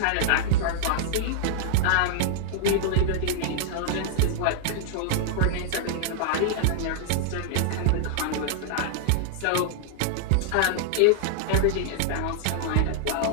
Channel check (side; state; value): both; different; correlation -0.01